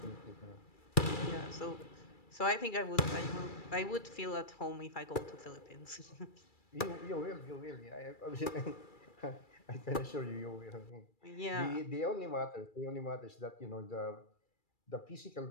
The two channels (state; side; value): late; right; 2.3 ms